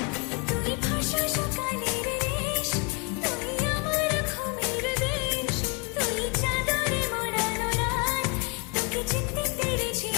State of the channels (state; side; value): quieter; right; 32.9 dB